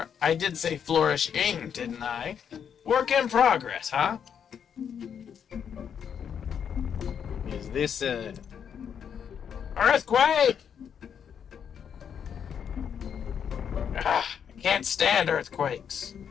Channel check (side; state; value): right; quieter; 7.9 dB